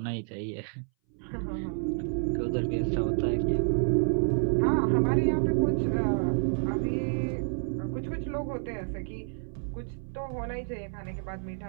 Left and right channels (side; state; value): left; silent; 58 dB below the other